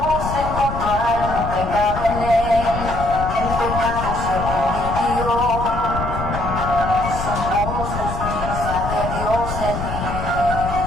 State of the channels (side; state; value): left; noise; rumble, 5 dB below the sound